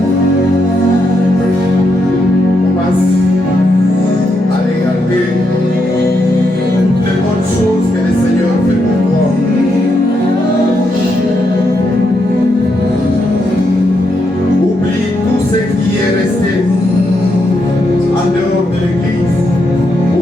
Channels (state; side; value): normal; both; correlation 0.81